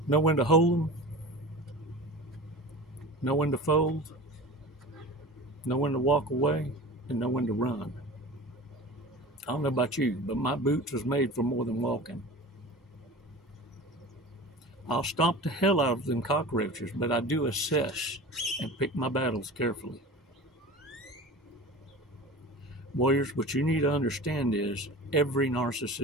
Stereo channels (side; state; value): both; normal; correlation 0.35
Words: Know when to hold 'em, know when to fold, know when to walk away, and know when to run. I don't know about you, but my boots was made for more than walking. I'll stomp the hell out of them cockroaches, but I do assess and pick my battles carefully. Warriors, what you need to understand is every